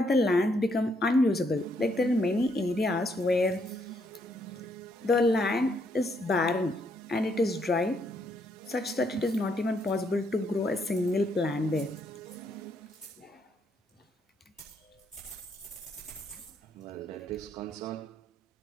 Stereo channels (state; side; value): normal; both; correlation 0.74